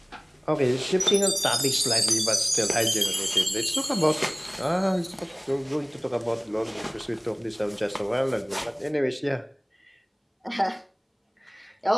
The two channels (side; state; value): both; identical; correlation 1.00